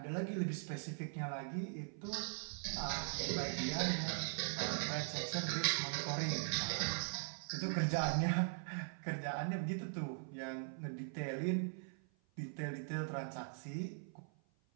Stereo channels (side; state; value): left; silent; 50 dB below the other